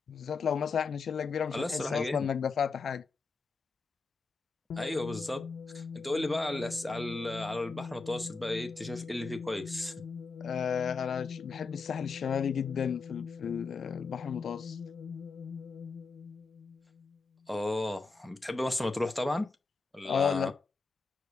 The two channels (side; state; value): right; quieter; 4.3 dB